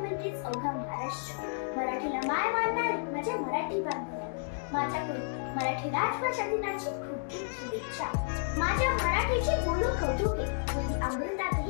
अवघा महाराष्ट्र। मराठीला माय मानणारे माझे मराठी बांधव, माझ्याकडून मराठी राजभाषा दिनाची खूप खूप शुभेच्छा। माझ्या मराठीचे बोलू कौतुके, म्हणजे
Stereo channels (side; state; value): right; silent; digital silence